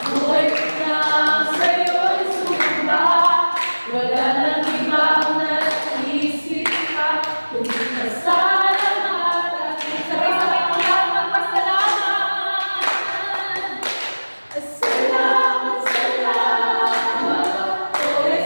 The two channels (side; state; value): both; inverted; correlation -1.00